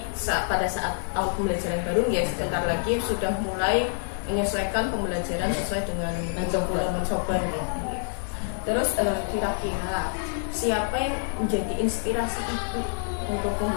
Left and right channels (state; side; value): silent; right; digital silence